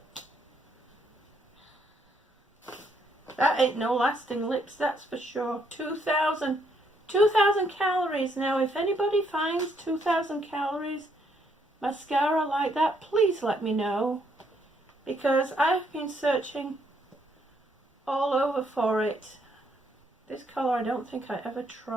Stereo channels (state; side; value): normal; both; correlation 0.72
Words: That ain't no lasting lips, that's for sure. 2,000 calories. Now, if anybody finds 2,000 calories mascara like that, please let me know. Because I've been searching all over for it. This colour I don't think I ever